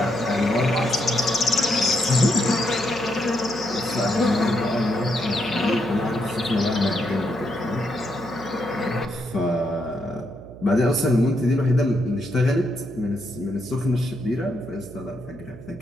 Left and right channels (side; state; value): right; noise; hum, 16 dB below the sound